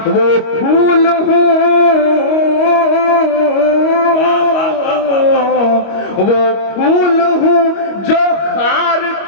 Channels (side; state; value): right; late; 25 ms